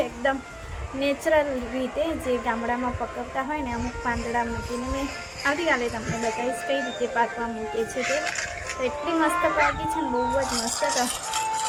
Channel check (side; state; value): both; identical; correlation 1.00